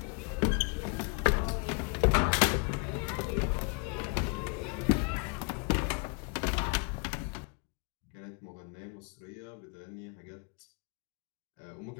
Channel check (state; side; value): quieter; right; 33.7 dB